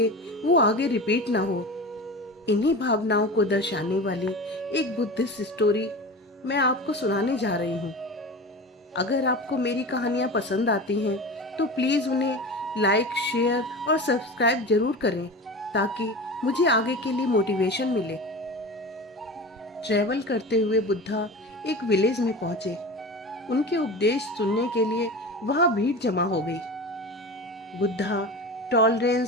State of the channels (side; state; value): both; normal; correlation 0.31